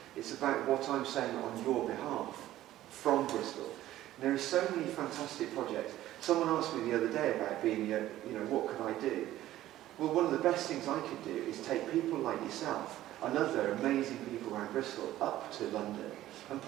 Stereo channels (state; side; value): quieter; left; 14.2 dB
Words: It's about what I'm saying on your behalf from Bristol. And there are so many fantastic projects. Someone asked me the other day about being, what could I do? Well, one of the best things I could do is take people like yourself and other amazing people around Bristol up to London and